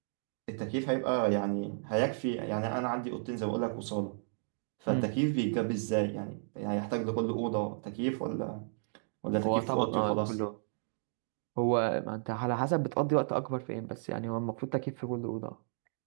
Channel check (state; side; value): silent; left; digital silence